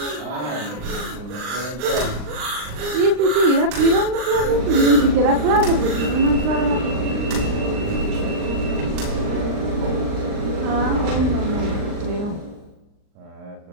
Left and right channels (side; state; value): left; late; 39 ms